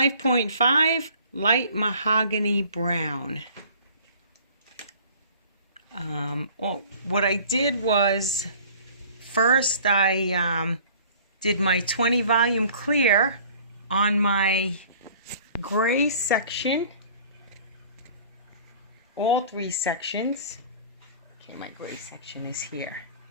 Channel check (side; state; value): both; inverted; correlation -0.50